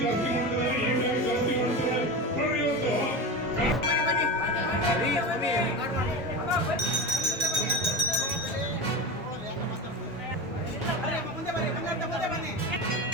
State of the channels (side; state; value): both; normal; correlation 0.24